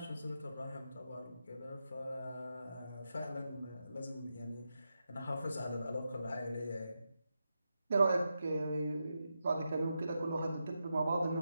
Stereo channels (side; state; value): both; inverted; correlation -0.87